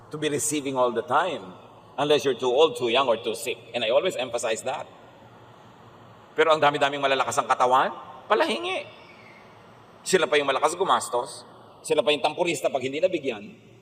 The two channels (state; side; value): identical; both; correlation 1.00